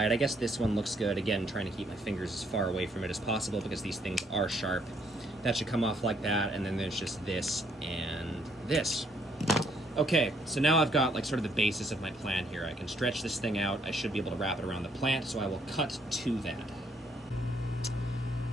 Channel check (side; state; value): both; normal; correlation 0.69